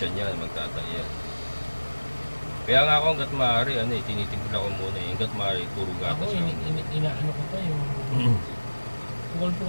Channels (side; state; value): both; inverted; correlation -1.00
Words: niya, magtatay yan. Kaya nga ako hanggat maaari, tinitimpla ko muna eh. Hanggat maaari, puro gatas Ako, lang. inaano ko pa yung